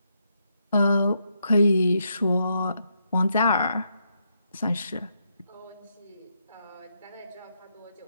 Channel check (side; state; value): both; inverted; correlation -0.79